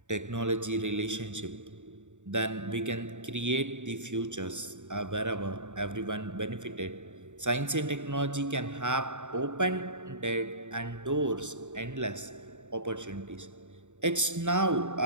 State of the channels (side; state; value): left; late; 0.85 ms